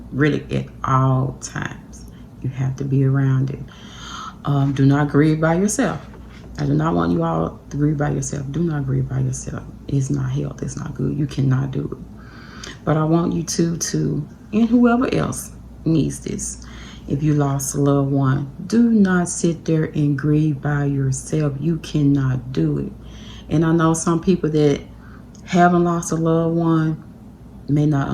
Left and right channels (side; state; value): both; identical; correlation 1.00